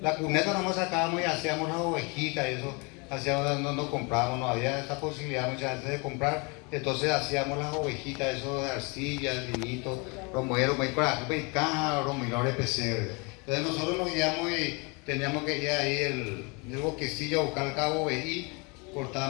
la cuneta, nomás sacábamos y hacíamos las ovejitas y eso, hacíamos, no comprábamos, no había esa posibilidad muchas veces de comprar, entonces hacíamos las ovejitas, eso de arcilla, el vinito, romero, y caja, romero de pesebre. Entonces nosotros nos guiamos y teníamos que ir ahí el bosquecillo a buscar el cabo ovejí,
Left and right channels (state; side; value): quieter; right; 30.5 dB